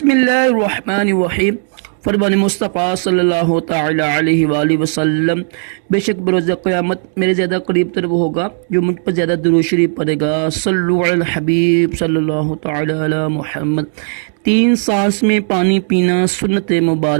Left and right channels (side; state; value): left; silent; 62 dB below the other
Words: اللہ الرحمن الرحیم۔ فرمان مصطفیٰ صلی اللہ تعالی علیہ وآلہ وسلم، بے شک بروز قیامت میرے زیادہ قریب تر وہ ہوگا جو مجھ پر زیادہ درود شریف پڑھے گا۔ صلو علی الحبیب صلی اللہ تعالی علی محمد۔ 3 سانس میں پانی پینا سنت